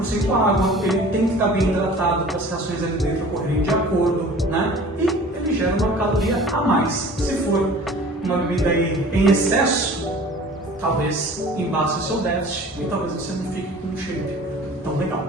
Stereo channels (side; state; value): both; normal; correlation 0.45